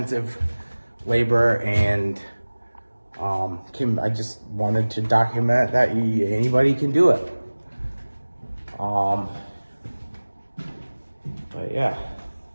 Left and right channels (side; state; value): both; inverted; correlation -1.00